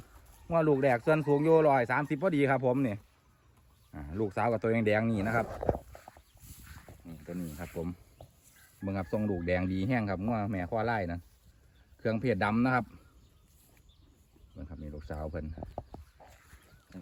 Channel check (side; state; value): both; identical; correlation 1.00